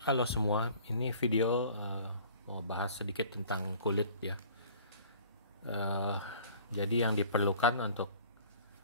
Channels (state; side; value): inverted; both; correlation -0.49